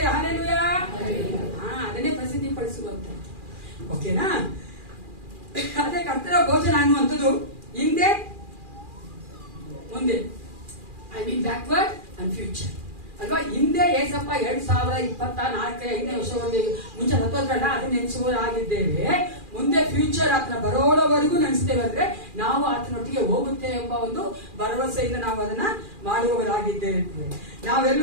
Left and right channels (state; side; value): late; left; 2.4 ms